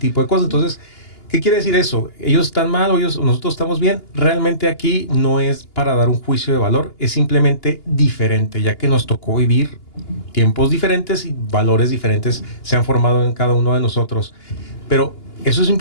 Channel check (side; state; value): right; late; 2.9 ms